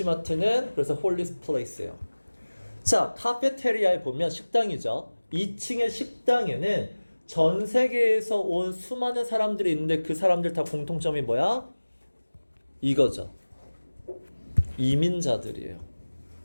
그래서 홀리 플레이스예요. 자, 카페테리아에 보면 식당이죠. 2층의 식당에는 전 세계에서 온 수많은 사람들이 있는데 그 사람들 다 공통점이 뭐야? 이거죠. 이민자들이에요.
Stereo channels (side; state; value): both; inverted; correlation -1.00